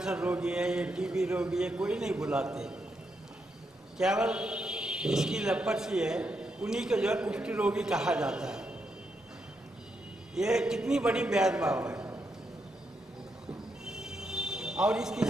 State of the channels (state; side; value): normal; both; correlation 0.81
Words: रोगी है, ये टीबी रोगी है, कोई नहीं बुलाते। केवल इसकी लेप्रोसी है उन्हीं को जो है कुष्ठ रोगी कहा जाता है। ये कितनी बड़ी भेदभाव है। और इसके